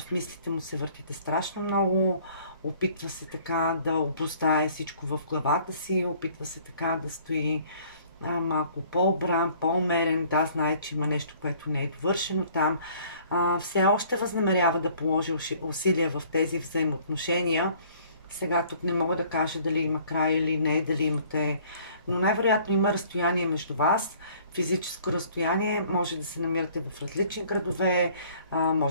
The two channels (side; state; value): both; inverted; correlation -0.55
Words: мислите му се въртите страшно много. Опитва се така да обуздае всичко в главата си. Опитва се така да стои малко по-обран, по-умерен. Да, знае, че има нещо, което не е довършено там. Все още възнамерява да положи усилия в тези взаимоотношения. Сега тук не мога да кажа дали има край или не, дали имате, но най-вероятно има разстояние между вас. Физическо разстояние, може да се намирате в различни градове,